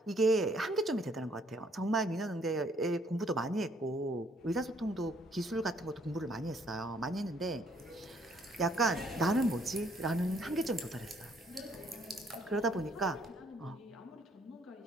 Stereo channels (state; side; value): normal; both; correlation 0.65